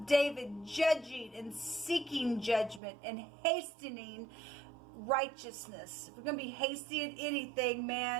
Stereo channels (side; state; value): left; drops out; at 2.8 s